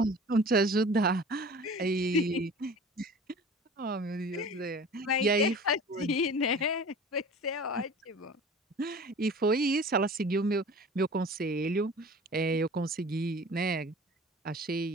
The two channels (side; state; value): both; normal; correlation 0.42